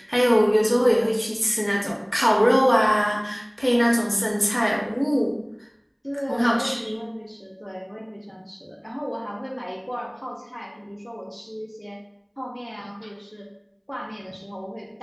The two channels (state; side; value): identical; both; correlation 1.00